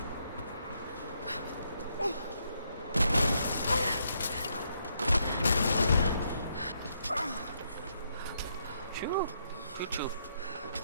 Chou, chou chou.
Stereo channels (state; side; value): inverted; both; correlation -0.76